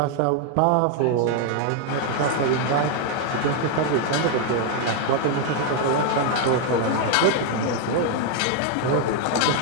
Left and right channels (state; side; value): different; both; correlation 0.00